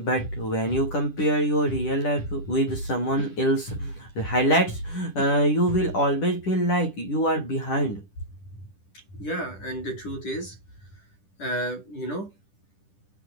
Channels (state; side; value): late; right; 10 ms